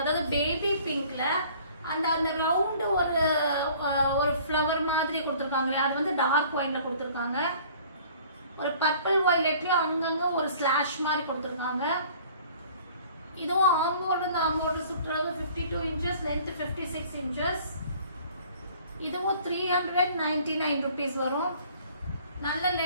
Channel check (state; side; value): inverted; both; correlation -0.52